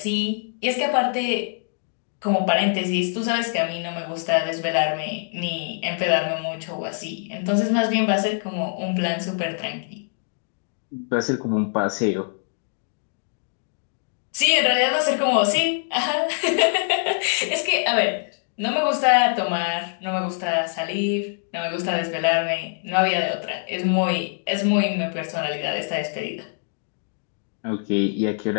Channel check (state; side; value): silent; right; digital silence